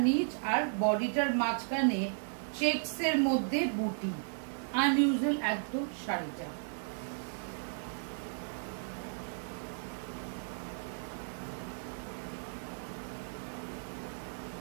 নিচ, আর বডিটার মাঝখানে চেকস এর মধ্যে বুটি। আনইউজুয়াল একদম শাড়িটা।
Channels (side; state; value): left; silent; digital silence